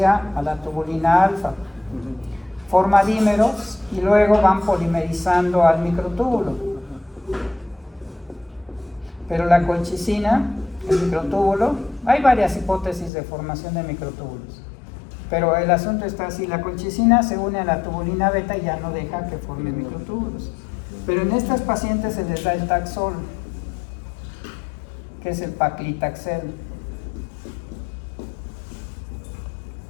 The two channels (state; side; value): drops out; right; at 13.1 s